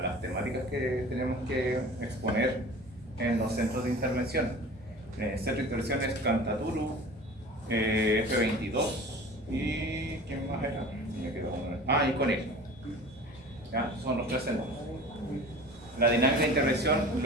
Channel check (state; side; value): normal; both; correlation 0.40